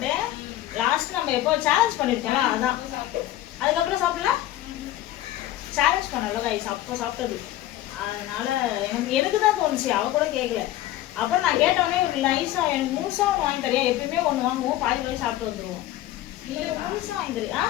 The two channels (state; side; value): quieter; right; 14.2 dB